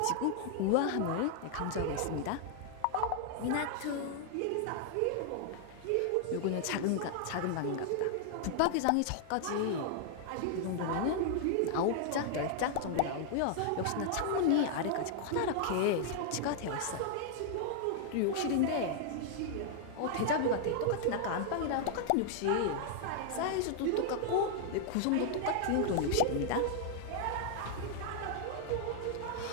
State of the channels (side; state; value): both; different; correlation -0.01